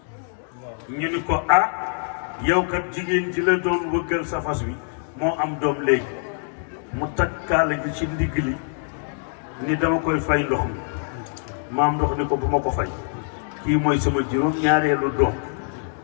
ñu ni ko yow kat jigéen ji la doon wëggal sa fas wi moo am doom léegi mu takkaale gi ci ndigg li ni dama koy fay ndox mi maam ndox ni ko bu ma ko fay kii mooy sama juróom ñaareelu doom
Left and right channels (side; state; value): right; silent; 63 dB below the other